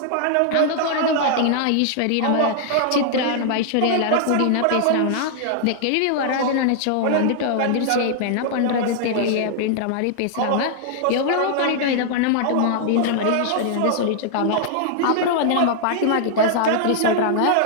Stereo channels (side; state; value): both; different; correlation -0.01